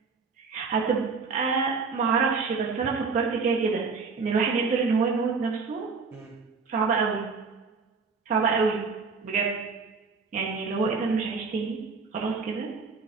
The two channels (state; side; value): quieter; left; 4.8 dB